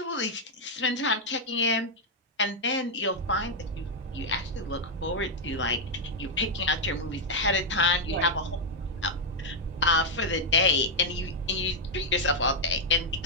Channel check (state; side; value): normal; both; correlation -0.01